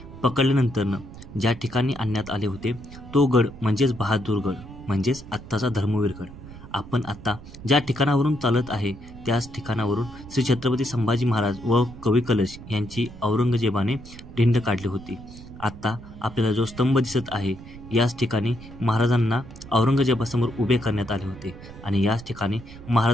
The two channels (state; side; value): noise; right; rumble, 16 dB below the sound